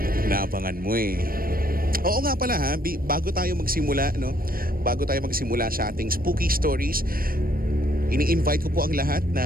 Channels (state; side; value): late; left; 0.42 ms